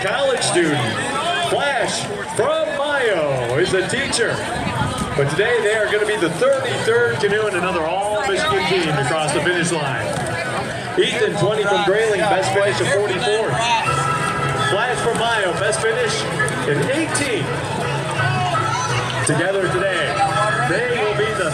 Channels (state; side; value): identical; both; correlation 1.00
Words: college student. Flash from Mayo is a teacher. But today they are going to be the 33rd canoe and another all-Michigan team to cross the finish line. Ethan, 20 from Grayling, best finish of 44th. Flash from Mayo, best finish in 18th. Together today, they will be the